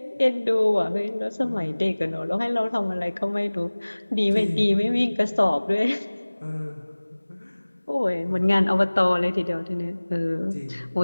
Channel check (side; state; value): both; inverted; correlation -1.00